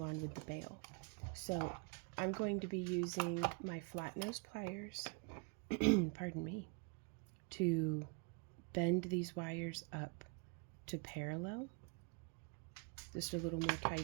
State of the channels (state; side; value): quieter; left; 34.1 dB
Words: on with the bail. So I'm going to be using my flat nose pliers, pardon me, to bend these wires up to parallel. Just a little more